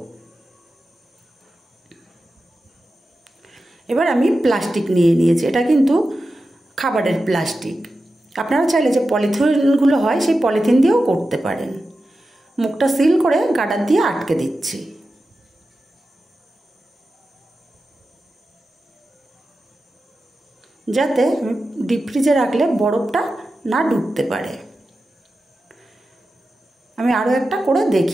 এবার আমি প্লাস্টিক নিয়ে নিয়েছি। এটা কিন্তু খাবারের প্লাস্টিক। আপনারা চাইলে যে পলিথিনগুলো হয় সেই পলিথিন দিয়েও করতে পারেন। মুখটা সিল করে গার্ডার দিয়ে আটকে দিচ্ছি। যাতে ডিপ ফ্রিজে রাখলে বরফটা না ঢুকতে পারে। আমি আরও একটা করে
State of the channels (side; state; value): both; normal; correlation 0.92